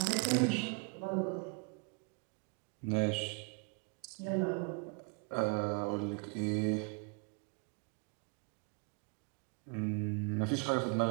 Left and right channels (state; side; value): quieter; left; 31.9 dB